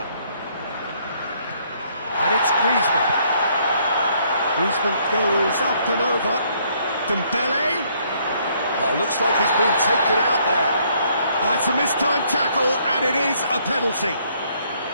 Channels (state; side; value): inverted; both; correlation -0.67